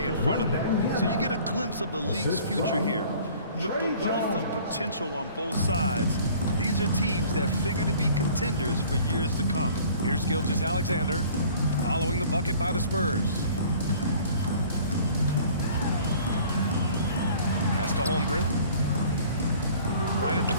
in front of them. So you get a glimpse of the league's future here. With the wealth of potential on both sides, these are teams that figure to be contenders for years to come. Here's Gilgeous-Alexander following the bucket by the Spurs. Pass to Holmgren. Right at the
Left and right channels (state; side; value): inverted; both; correlation -0.50